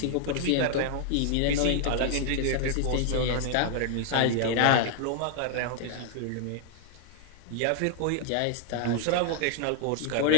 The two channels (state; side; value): different; both; correlation 0.00